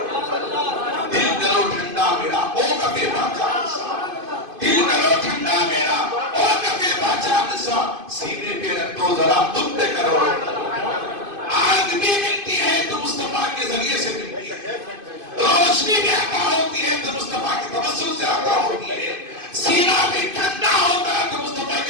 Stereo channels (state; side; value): late; left; 2.5 ms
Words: دل کرو ٹھنڈا میرا او کبھی باچا نسا، دل کرو ٹھنڈا میرا او کبھی باچا نسا، سینے پہ رکھ دو ذرا تم پہ کرو، آگ بھی ملتی ہے تو مصطفیٰ کے ذریعے سے ملتی ہے، روشنی بھی عطا ہوتی ہے تو مصطفیٰ کے توسل سے عطا ہوتی ہے، سینہ بھی ٹھنڈا ہوتا ہے تو مصطفیٰ